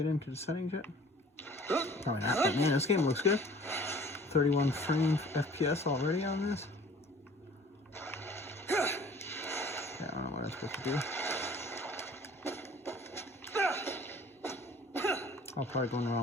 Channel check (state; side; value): normal; both; correlation 0.50